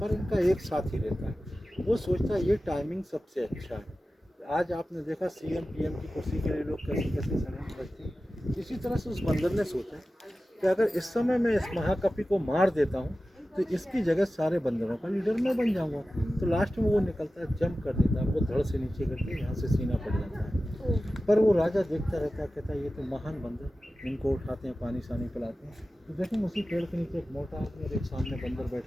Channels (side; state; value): both; normal; correlation 0.95